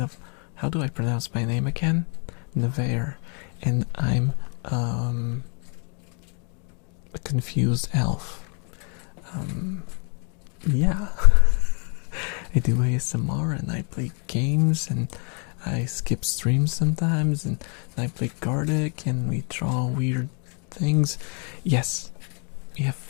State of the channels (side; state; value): right; quieter; 39.2 dB